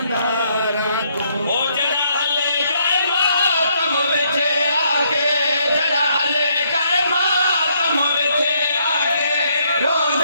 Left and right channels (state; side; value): inverted; both; correlation -0.71